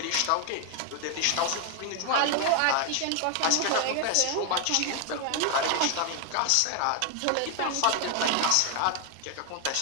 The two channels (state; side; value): different; both; correlation 0.01